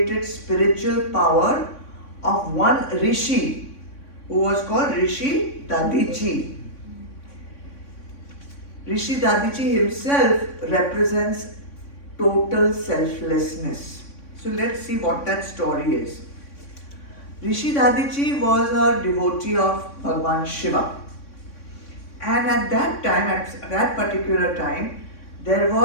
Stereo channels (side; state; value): right; late; 3.6 ms